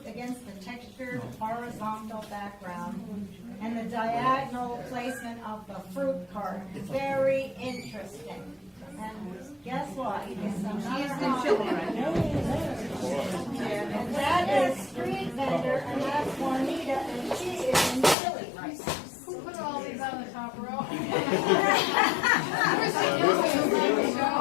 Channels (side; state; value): right; drops out; at 18.2 s